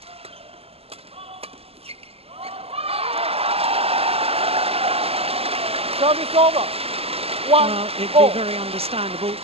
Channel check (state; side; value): late; left; 0.29 ms